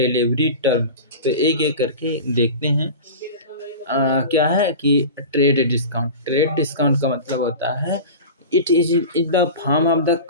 टर्म, तो एक-एक करके देखते हैं। क्या है कि ट्रेड डिस्काउंट का मतलब होता है, it the form of the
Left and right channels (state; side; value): inverted; both; correlation -0.31